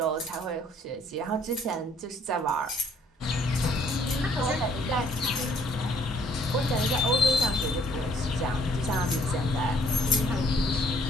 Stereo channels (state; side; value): normal; both; correlation 0.63